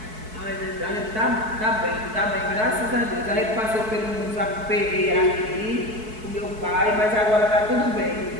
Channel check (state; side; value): late; left; 4.6 ms